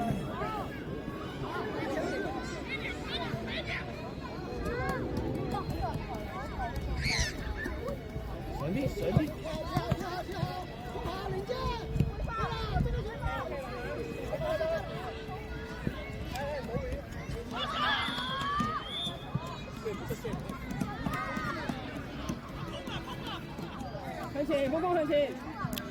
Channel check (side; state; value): both; identical; correlation 1.00